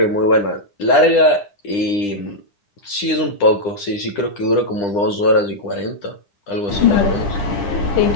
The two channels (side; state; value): right; late; 9.9 ms